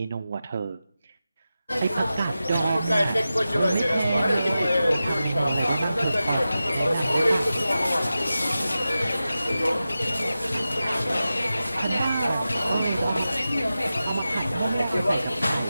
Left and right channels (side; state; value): both; inverted; correlation -0.93